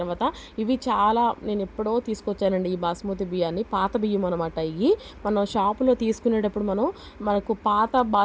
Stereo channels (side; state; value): both; identical; correlation 1.00